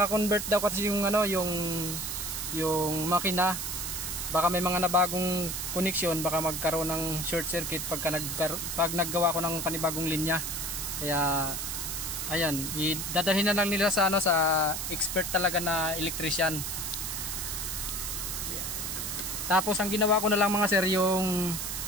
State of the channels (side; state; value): right; noise; hiss, 4 dB below the sound